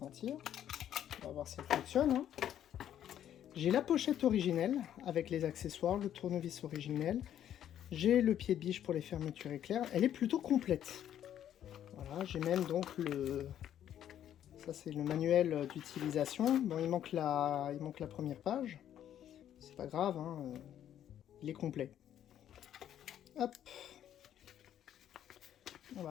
On va voir si elle fonctionne, hein. J'ai la pochette originelle avec les accessoires, le tournevis originel. J'ai le pied de biche pour les fermetures éclairs. Elle est plutôt complète. Voilà, j'ai même donc ça c'est le manuel d'utilisation. Bon, il manque la première page. C'est pas grave, hein, il est complet. Hop. On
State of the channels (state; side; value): quieter; right; 10.6 dB